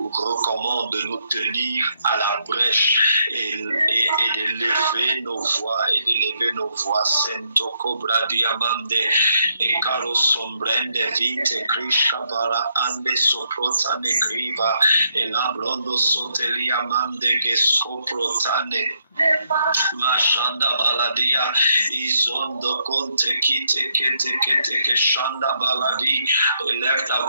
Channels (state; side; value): inverted; both; correlation -0.76